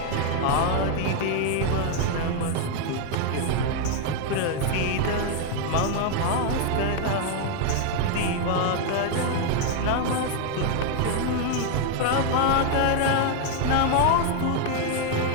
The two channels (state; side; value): different; both; correlation 0.01